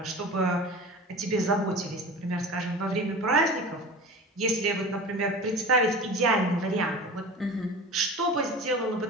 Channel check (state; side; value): normal; both; correlation 0.35